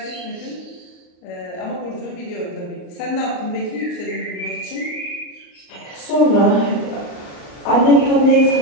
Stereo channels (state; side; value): late; right; 38 ms